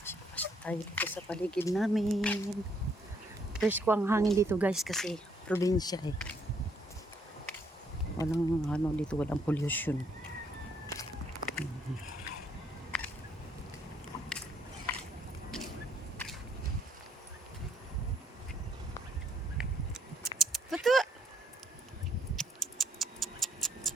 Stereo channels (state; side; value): normal; both; correlation 0.69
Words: Pasyal-pasyal tayo dito sa paligid namin. Fresh ko ang hangin dito guys kasi probinsya eh. Walang dito, walang pollution. Tutu!